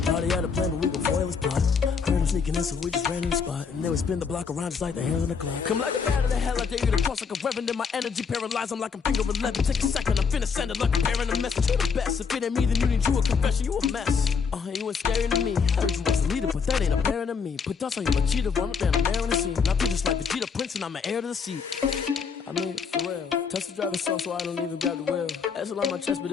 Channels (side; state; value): right; quieter; 5.8 dB